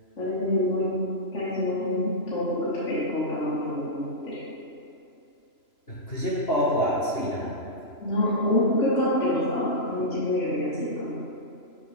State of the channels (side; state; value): right; late; 3.0 ms